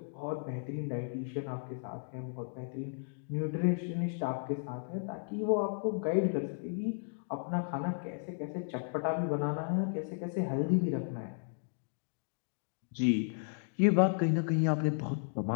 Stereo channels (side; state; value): right; silent; digital silence